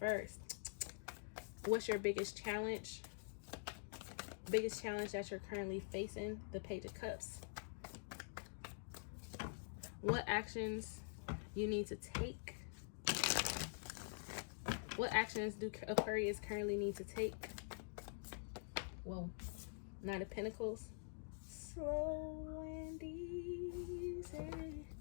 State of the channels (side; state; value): right; silent; digital silence